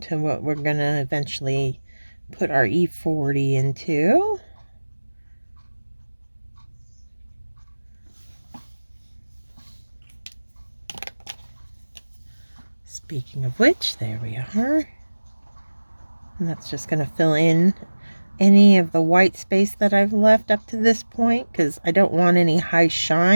what we're going to eventually put our E40 into. Speaking of which, there we are. And that's just going to fill in any of the white space that I've left up to this point, because I don't want any high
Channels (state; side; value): inverted; both; correlation -1.00